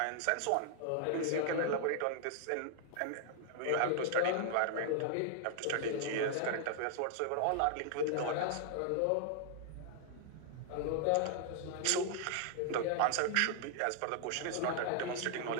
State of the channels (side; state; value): both; different; correlation 0.00